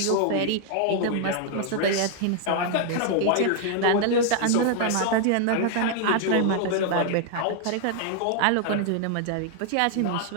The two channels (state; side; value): different; both; correlation 0.00